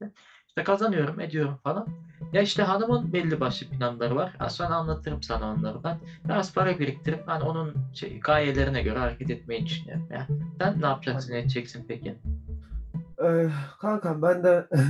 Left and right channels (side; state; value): both; identical; correlation 1.00